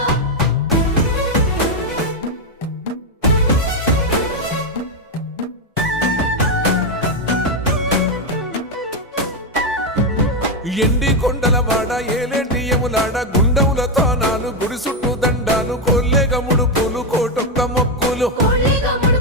ఎండి కొండల వాడ ఏలేటి యములాడ గుండములతో నాలు గుడి చుట్టూ దండాలు కొల్లేగ ముడుపులు కోటొక్క మొక్కులు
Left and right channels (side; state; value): both; normal; correlation 0.05